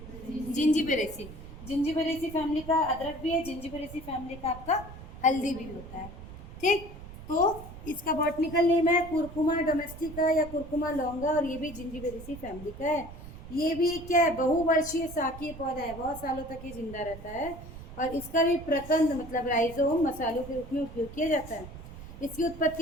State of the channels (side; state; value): right; noise; rumble, 14 dB below the sound